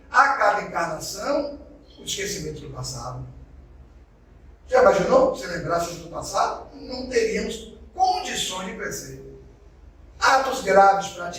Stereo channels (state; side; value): identical; both; correlation 1.00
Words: a cada encarnação, o esquecimento do passado. Já imaginou? Se lembrasse do passado, não teríamos condições condições de crescer. Atos graves